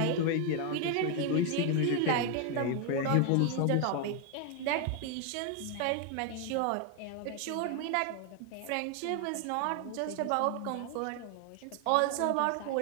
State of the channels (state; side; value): different; both; correlation 0.01